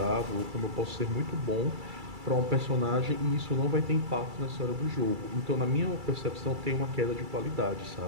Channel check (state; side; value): late; left; 2.3 ms